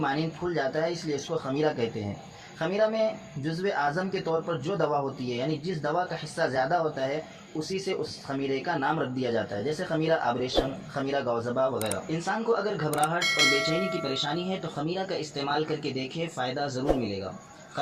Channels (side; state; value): both; identical; correlation 1.00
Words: پھول جاتا ہے، اس لیے اس کو خمیرہ کہتے ہیں۔ خمیرہ میں جزو اعظم کے طور پر جو دوا ہوتی ہے یعنی جس دوا کا حصہ زیادہ ہوتا ہے اسی سے اس خمیرے کا نام رکھ دیا جاتا ہے، جیسے خمیرہ آبریشم، خمیرہ گوزبا وغیرہ۔ انسان کو اگر گھبراہٹ اور بے چینی کی پریشانی ہے تو خمیرہ کا استعمال کر کے دیکھے، فائدہ ضرور ملے گا۔